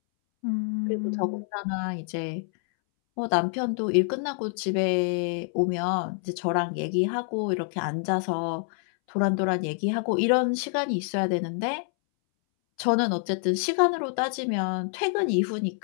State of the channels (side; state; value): right; silent; 60 dB below the other